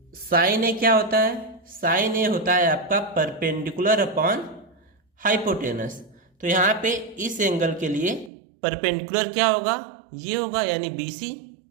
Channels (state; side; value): drops out; left; at 8.3 s